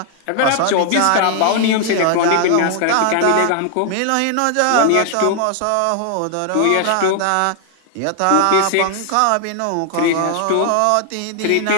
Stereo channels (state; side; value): different; both; correlation 0.00